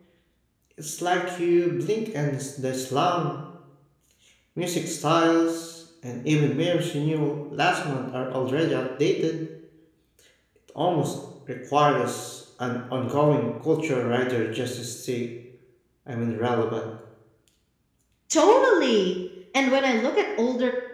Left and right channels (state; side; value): identical; both; correlation 1.00